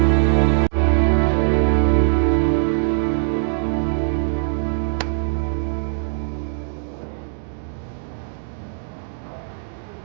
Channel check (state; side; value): silent; left; digital silence